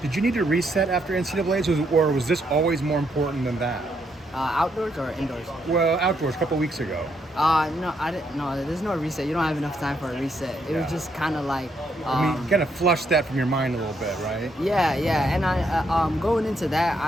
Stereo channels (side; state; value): both; normal; correlation 0.75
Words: Did you need to reset after NCAAs, or was this always more important than that? Outdoors or indoors? Well, outdoors, a couple weeks ago. No, I didn't. No, there's no reset. You don't have enough time for a reset. It was just kind of like. I mean, kind of flush that from your mind a little bit, right? Yeah, and I going into that,